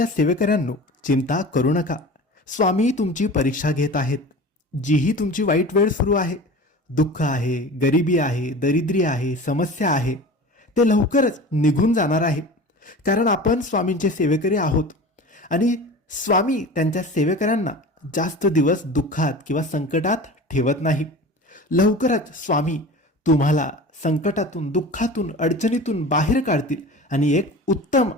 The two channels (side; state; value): both; normal; correlation 0.36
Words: सेवेकऱ्यांनो, चिंता करू नका. स्वामी तुमची परीक्षा घेत आहेत. जीही तुमची वाईट वेळ सुरू आहे, दुःख आहे, गरिबी आहे, दरिद्री आहे, समस्या आहे, ते लवकरच निघून जाणार आहे. कारण आपण स्वामींचे सेवेकरी आहोत आणि स्वामी त्यांच्या सेवेकऱ्यांना जास्त दिवस दुःखात किंवा संकटात ठेवत नाही. लवकरच स्वामी तुम्हाला संकटातून, दुःखातून, अडचणीतून बाहेर काढतील आणि एक उत्तम